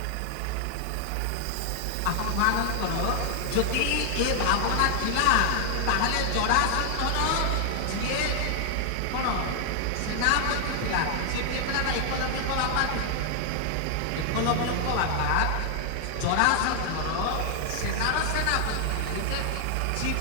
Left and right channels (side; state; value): both; different; correlation 0.00